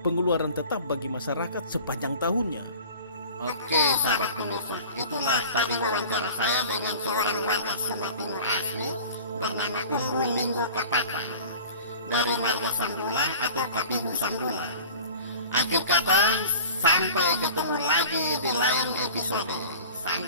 tetap bagi masyarakat sepanjang tahunnya. Oke, sahabat pemirsa, itulah tadi wawancara saya dengan seorang warga Sumba Timur asli bernama Umbu Linggo Kapaka dari marga Sambula atau Kapihu Sambula. Akhir kata, sampai ketemu lagi di lain episode.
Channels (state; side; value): inverted; both; correlation -0.41